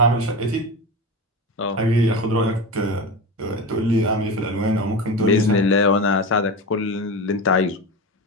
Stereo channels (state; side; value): normal; both; correlation 0.24